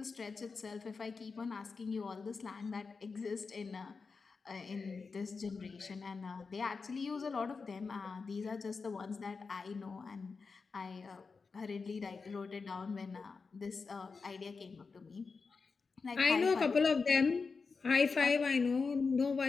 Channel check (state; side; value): quieter; right; 4.7 dB